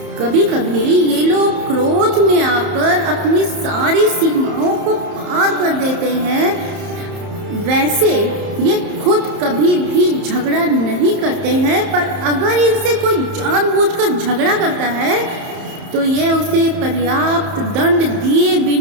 कभी कभी ये लोग क्रोध में आकर अपनी सारी सीमाओं को पार कर देते हैं। वैसे ये खुद कभी भी झगड़ा नहीं करते हैं, पर अगर इनसे कोई जानबूझकर झगड़ा करता है तो ये उसे पर्याप्त दंड दिए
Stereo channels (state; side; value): late; left; 31 ms